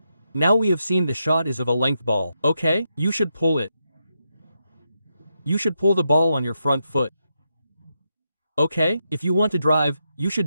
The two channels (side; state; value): both; inverted; correlation -0.84